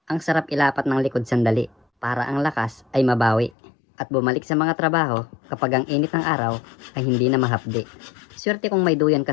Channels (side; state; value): right; drops out; at 3.6 s